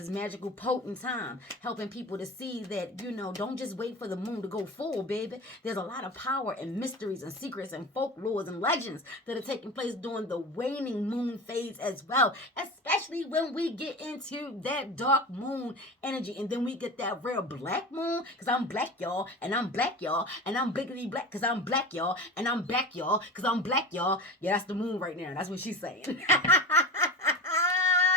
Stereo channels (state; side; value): normal; both; correlation 0.31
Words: magical, potent time, helping people to see that, you know, don't just wait for the moon to go full, baby. There's a lot of power and mysteries and secrets and folklores and legends that are taking place during the waning moon phase as well, especially when we get into that dark moon energy. And then we get that real black moon, because I'm black, y'all, and I'm black, y'all, and I'm biggity black, because I'm black, y'all, and I'm back, y'all, because I'm black, y'all. Yeah, that's the moon right now. That's what she's saying.